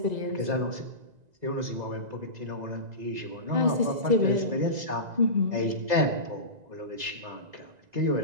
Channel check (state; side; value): late; left; 2.0 ms